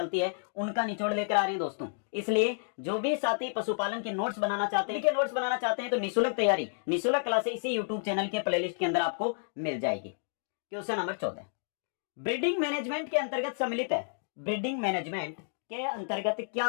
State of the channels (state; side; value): silent; right; digital silence